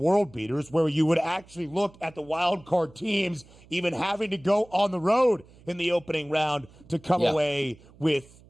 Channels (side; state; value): right; noise; hum, 25 dB below the sound